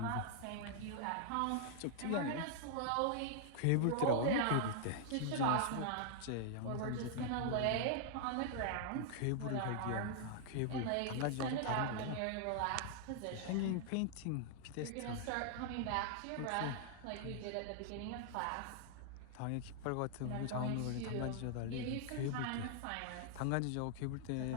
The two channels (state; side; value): different; both; correlation -0.01